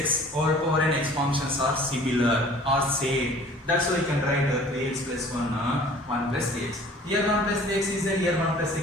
all power n x functions are similar or same. That's why you can write 3x plus 1 plus 3x. Here 1 plus 3x is there, here 1 plus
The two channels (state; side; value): normal; both; correlation 0.49